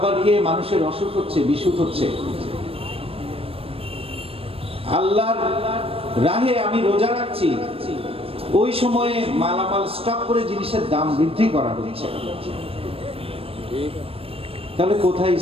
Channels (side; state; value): left; late; 0.28 ms